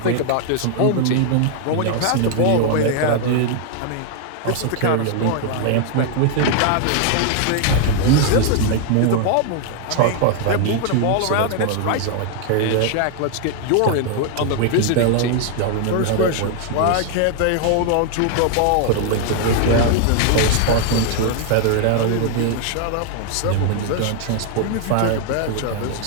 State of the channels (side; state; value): both; different; correlation 0.00